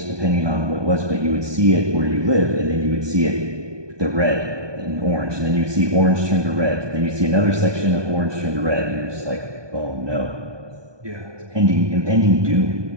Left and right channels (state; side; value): late; left; 1.2 ms